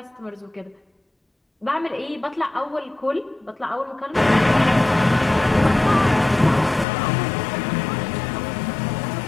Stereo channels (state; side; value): drops out; right; at 6.9 s